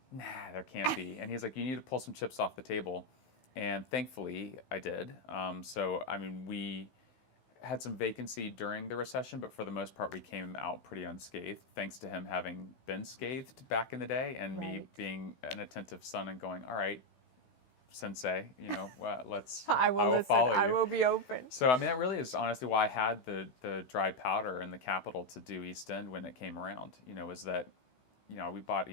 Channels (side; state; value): right; late; 16 ms